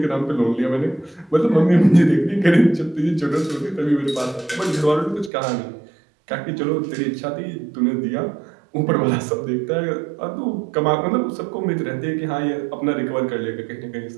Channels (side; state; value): left; drops out; at 5.3 s